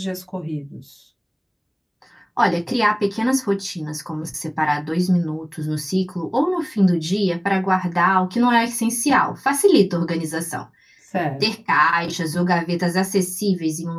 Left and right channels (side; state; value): both; identical; correlation 1.00